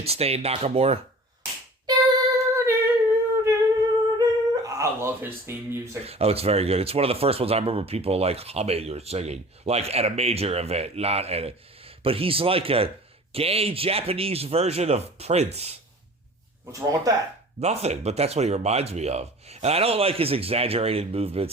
Nakamura. I love his theme music. Oh, it's very good. It's one of the first ones I remember people humming or singing, at a major event, not at a. But he's like a gay Japanese version of Prince. What's wrong with that? Nothing, but that's what he reminds me of. And I don't like his exaggerated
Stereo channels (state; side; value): normal; both; correlation 0.42